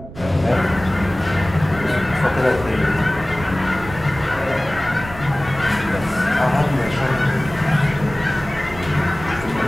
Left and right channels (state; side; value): noise; right; rumble, 14 dB below the sound